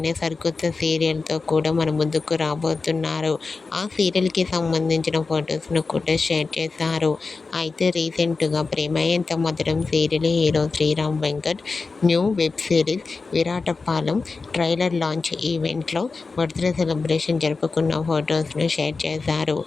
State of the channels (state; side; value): quieter; right; 4.2 dB